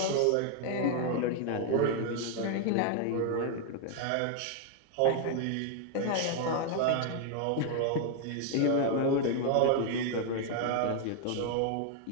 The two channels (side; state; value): both; different; correlation 0.00